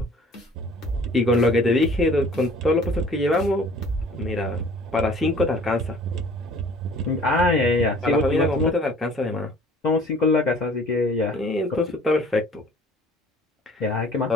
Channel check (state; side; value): normal; both; correlation 0.51